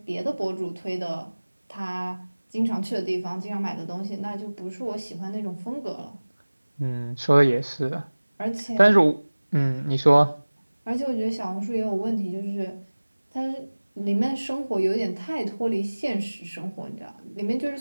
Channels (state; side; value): inverted; both; correlation -1.00